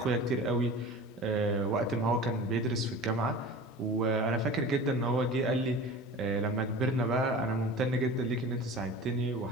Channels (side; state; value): both; normal; correlation 0.37